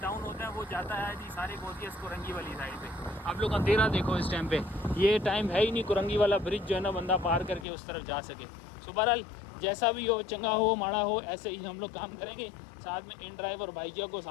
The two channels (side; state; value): right; drops out; at 7.7 s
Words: होता है, वो जाता है जी सारे कोरियर्स कुरंगी वाली साइड पे। आप लोग अंधेरा देखो इस टाइम पे, ये टाइम है ही नहीं कुरंगी वाला ब्रिज जो है ना बंदा पार करके उस तरफ जा सके। सो बहरहाल जैसा भी हो, चंगा हो माड़ा हो, ऐसे ही हम लोग काम करेंगे। साथ में इन ड्राइव और बाइकिया को